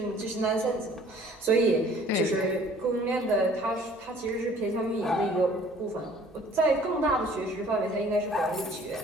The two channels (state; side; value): normal; both; correlation 0.53